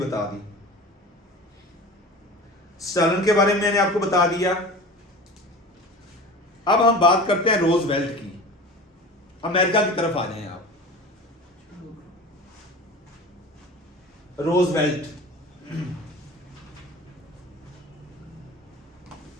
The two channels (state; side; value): normal; both; correlation 0.36